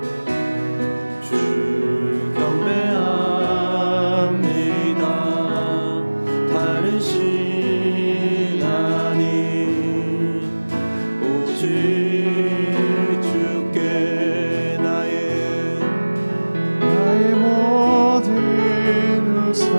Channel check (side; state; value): both; inverted; correlation -1.00